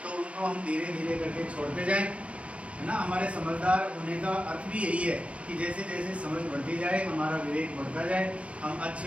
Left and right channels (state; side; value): late; left; 0.062 ms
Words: तो उनको हम धीरे धीरे करके छोड़ते जाएं, है ना। हमारे समझदार होने का अर्थ भी यही है कि जैसे जैसे समझ बढ़ती जाए, हमारा विवेक बढ़ता जाए, हम